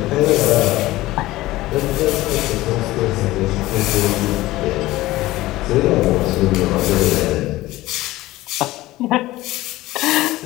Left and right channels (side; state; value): right; quieter; 17.6 dB